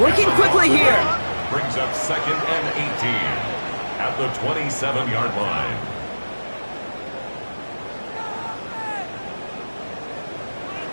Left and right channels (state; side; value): inverted; both; correlation -1.00